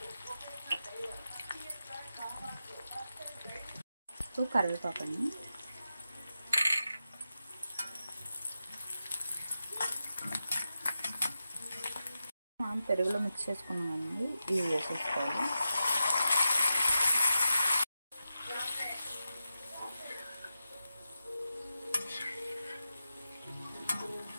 ఇప్పుడు కరివేపాకు అండి, మనం పెరుగులో మిక్స్ చేసుకున్నామండి. ఇవి వేసేసుకోవాలి.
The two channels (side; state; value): both; inverted; correlation -0.91